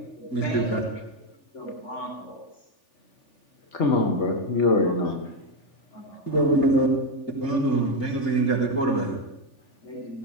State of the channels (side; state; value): right; late; 3.4 ms